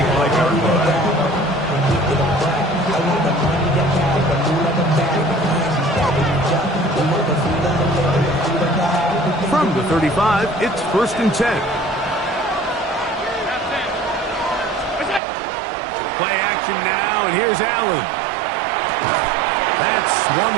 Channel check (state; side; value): drops out; left; at 15.2 s